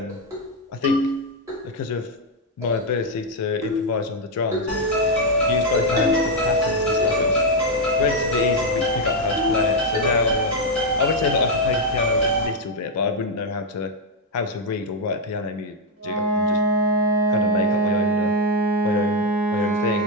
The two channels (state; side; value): normal; both; correlation 0.02